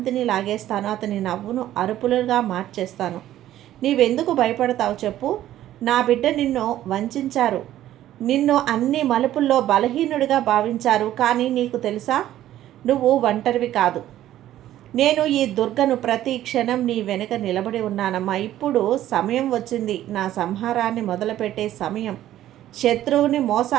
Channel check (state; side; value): quieter; left; 13.0 dB